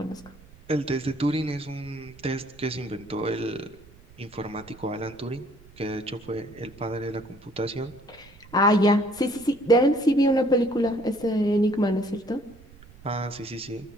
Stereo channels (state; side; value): noise; right; rumble, 23 dB below the sound